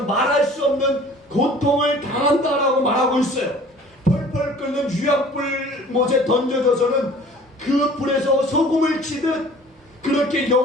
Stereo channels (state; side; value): normal; both; correlation 0.48